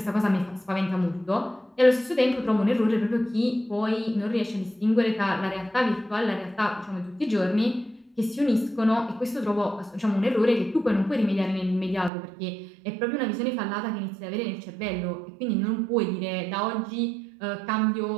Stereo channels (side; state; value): left; drops out; at 12.1 s